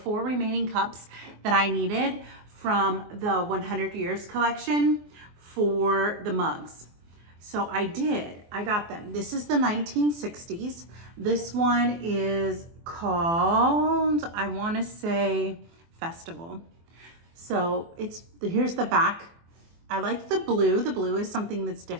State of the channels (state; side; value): late; left; 24 ms